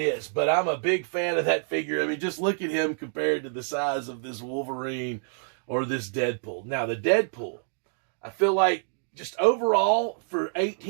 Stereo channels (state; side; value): silent; left; digital silence